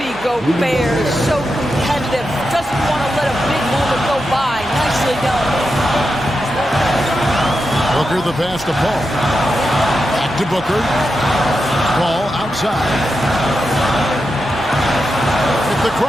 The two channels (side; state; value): right; noise; hum, 20 dB below the sound